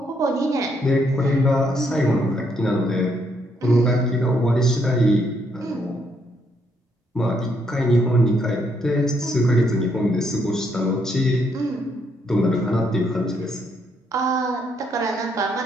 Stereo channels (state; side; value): normal; both; correlation 0.73